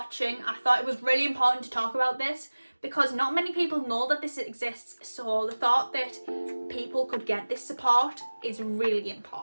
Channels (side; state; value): both; inverted; correlation -1.00